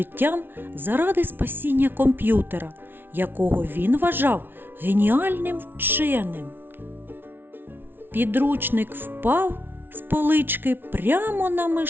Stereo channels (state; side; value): late; left; 0.10 ms